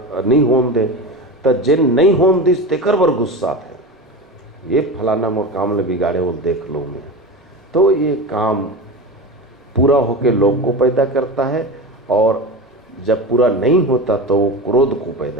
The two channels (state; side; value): normal; both; correlation 0.26